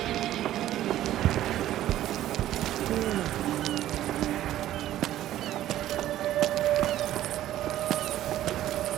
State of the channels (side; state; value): left; quieter; 13.3 dB